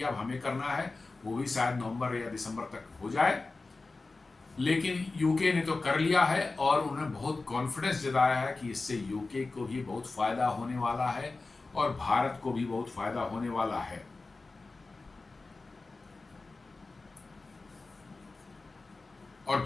अब हमें करना है, वो भी शायद नवंबर या दिसंबर तक हो जाए। लेकिन यूके ने तो कर लिया है और उन्होंने बहुत कॉन्फिडेंस जताया है कि इससे यूके को भी बहुत फायदा होने वाला है और भारत को भी बहुत फायदा होने वाला है। और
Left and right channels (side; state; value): right; quieter; 3.6 dB